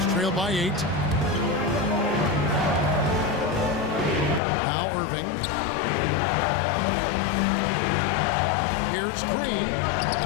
trail by 8. Now Irving. Here's Green.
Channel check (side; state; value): right; drops out; at 4.4 s